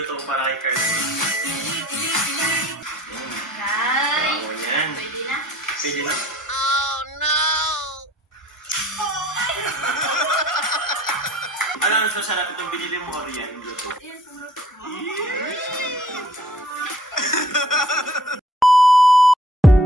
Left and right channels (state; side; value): normal; both; correlation 0.54